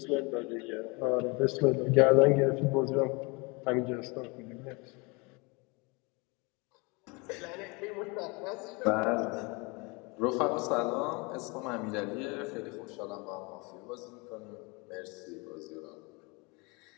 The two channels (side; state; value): right; quieter; 28.5 dB